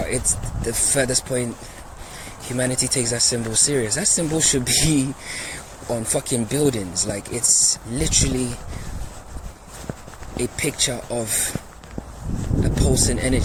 it's the furthest point humanity takes that symbol serious. That symbol should be on fucking buildings. Like, it's literally a picture of a pulsing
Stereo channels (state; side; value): identical; both; correlation 1.00